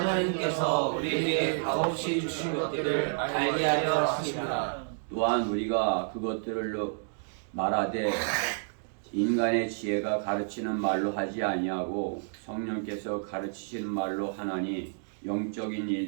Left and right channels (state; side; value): silent; left; digital silence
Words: 우리에게 값없이 주신 것들을 알게 하려 하심이라. 또한 우리가 그것들을 말하되 인간의 지혜가 가르치는 말로 하지 아니하고 성령께서 가르치시는 말로 하나니 영적인